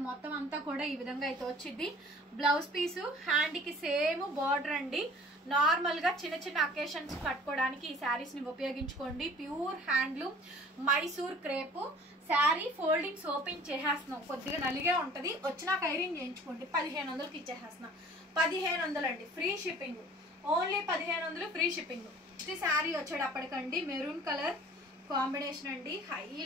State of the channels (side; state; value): both; normal; correlation 0.48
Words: మొత్తం అంతా కూడా ఈ విధంగా అయితే వచ్చింది. బ్లౌజ్ పీసు హ్యాండ్కి సేమ్ బార్డర్ అండి. నార్మల్గా చిన్న అకేషన్స్ కట్టుకోవడానికి ఈ శారీస్ని ఉపయోగించుకోండి. Pure handloom Mysore crepe sari. Foldings open చేసేస్తున్నాం, కొద్దిగా నలిగే ఉంటుంది. వచ్చినాక ఐరన్ చేయించుకోండి. 1500కి ఇచ్చేసేస్తున్నాం. 1500 అండి, free shipping. Only 1500 free shipping. Next sari వచ్చేటప్పటికండి మెరూన్ కలర్ కాంబినేషన్ అండి.